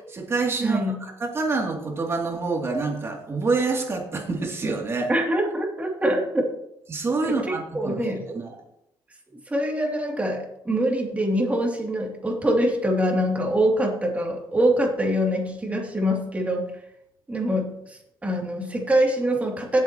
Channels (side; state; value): both; normal; correlation 0.76